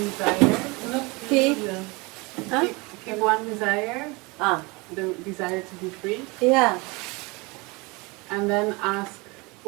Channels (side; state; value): left; quieter; 26.2 dB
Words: Not Keep? yeah. Huh? Keep one desire, Ah, the desire to be free, yeah. and then ask